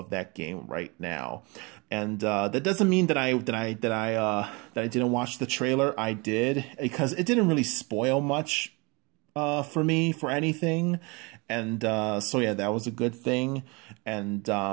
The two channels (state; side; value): quieter; left; 28.1 dB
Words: that game right now. And that doesn't mean that I didn't watch the trailer. I did, because it didn't really spoil much for me for anything. And so yeah, that was a good thing. And